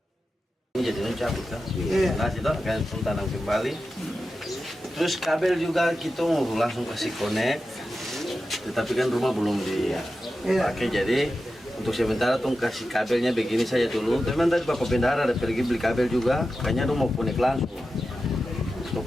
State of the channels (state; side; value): normal; both; correlation 0.92